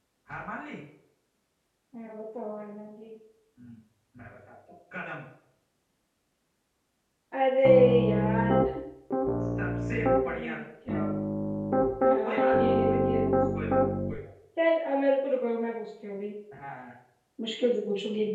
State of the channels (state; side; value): identical; both; correlation 1.00